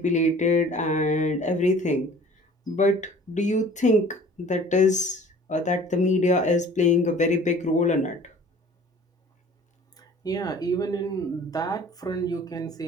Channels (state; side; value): normal; both; correlation 0.49